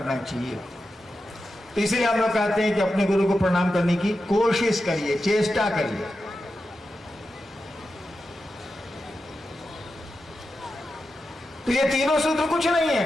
चाहिए। तो इसलिए हम लोग कहते हैं कि अपने गुरु को प्रणाम करने की कोशिश करिए, चेष्टा करिए। तो ये तीनों सूत्र कुछ नहीं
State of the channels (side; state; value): both; normal; correlation 0.90